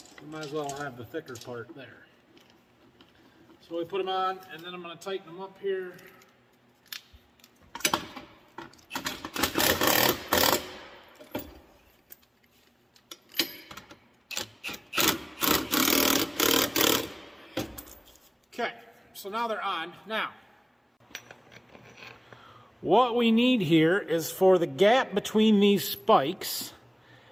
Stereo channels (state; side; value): identical; both; correlation 1.00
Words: we might as well have the thicker part there. So we put them on, and then I'm going to tighten them up here. Okay, so now they're on. Now, what we need here is for the gap between these spikes